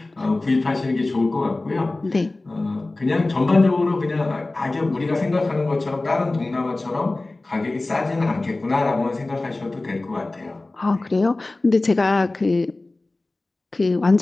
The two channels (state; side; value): quieter; right; 3.0 dB